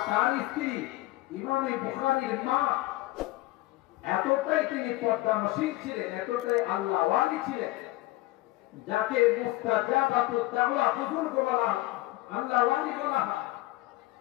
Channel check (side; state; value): right; quieter; 18.4 dB